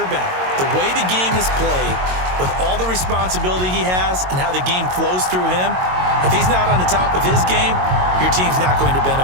The way the game is played, with all the responsibility he has and how the game flows through him, if he's not on the top of his game, your team's not going to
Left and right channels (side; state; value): left; late; 22 ms